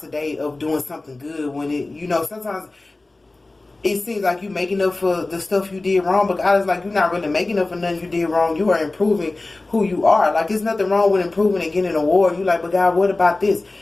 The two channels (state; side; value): quieter; right; 3.1 dB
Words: today of doing something good when it, you know, sometimes it seems like you making up for the stuff you did wrong, but God is like, you're not really making up for nothing you did wrong. You are improving who you are. Like, there's nothing wrong with improving and getting an award. You like, but God, what about this?